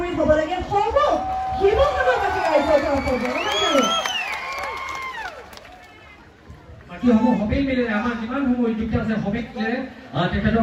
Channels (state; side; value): identical; both; correlation 1.00